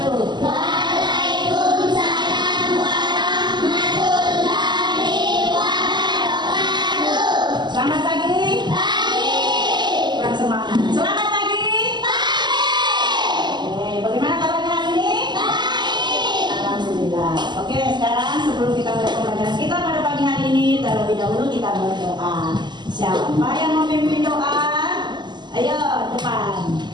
Waalaikumsalam warahmatullahi wabarakatuh. Selamat pagi. Pagi. Kurang semangat. Selamat pagi. Pagi. Oke, bagaimana kabarnya hari ini? Baik. Alhamdulillah. Oke, sekarang sebelum kita mulai pembelajaran kita pada pagi hari ini, terlebih dahulu kita berdoa. Siapa yang memimpin doa? Ayo, depan.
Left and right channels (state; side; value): late; left; 0.21 ms